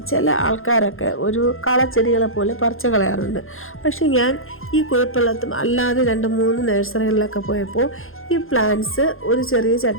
ചില ആൾക്കാരൊക്കെ ഒരു കളച്ചെടികളെ പോലെ പറിച്ച് കളയാറുണ്ട്. പക്ഷേ ഞാൻ ഈ കുഴപ്പമില്ലാത്ത അല്ലാതെ 2-3 നഴ്സറികളിലൊക്കെ പോയപ്പോൾ ഈ പ്ലാന്റ്സ് ഒരു ചെറിയ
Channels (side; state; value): right; late; 0.60 ms